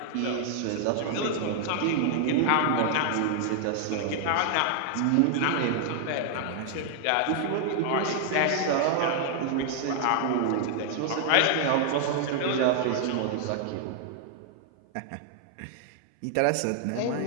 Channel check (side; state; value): both; different; correlation 0.00